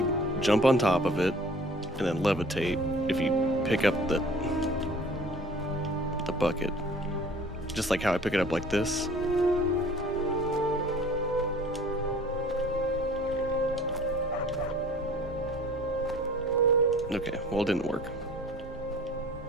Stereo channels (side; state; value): both; normal; correlation 0.48